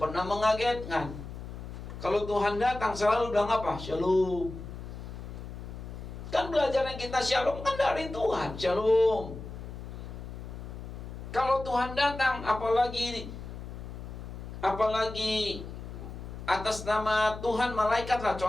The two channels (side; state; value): left; noise; hum, 10 dB below the sound